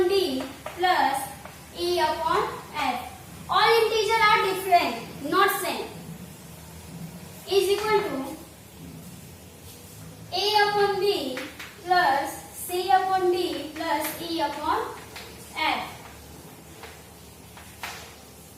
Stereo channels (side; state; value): both; identical; correlation 1.00